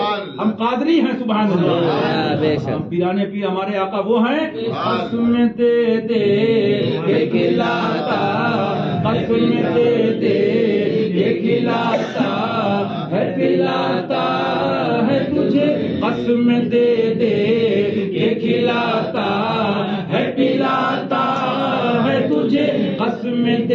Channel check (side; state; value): both; identical; correlation 1.00